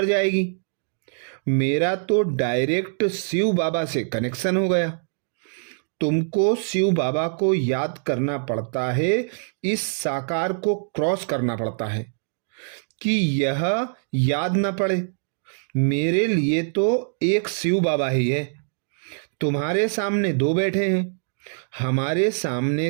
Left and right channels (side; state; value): left; silent; digital silence